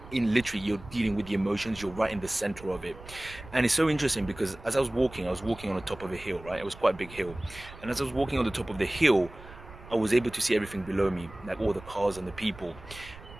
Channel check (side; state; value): right; noise; rumble, 17 dB below the sound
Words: in literally, you're dealing with the emotions, you're right in the center of it. And it's so interesting because as I was walking on the top of a hill, right? It was quite a big hill. And as I was walking on the top of the hill, I was able to see everything below me, like all the cars and the people.